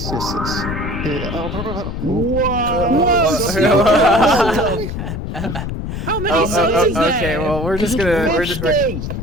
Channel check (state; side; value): noise; left; rumble, 5 dB below the sound